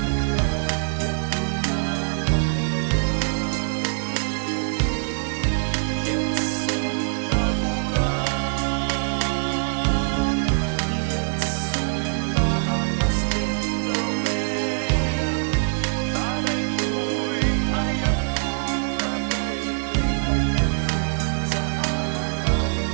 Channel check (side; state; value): left; silent; digital silence